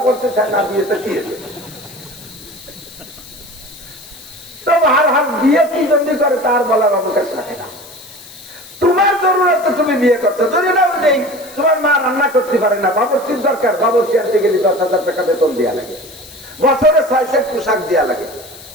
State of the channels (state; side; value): noise; left; hiss, 19 dB below the sound